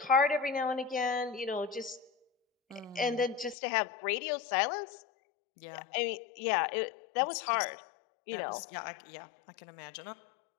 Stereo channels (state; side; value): drops out; right; at 3.6 s